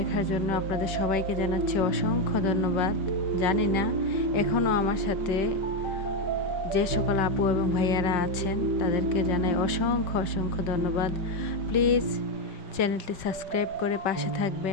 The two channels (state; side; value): late; right; 5.6 ms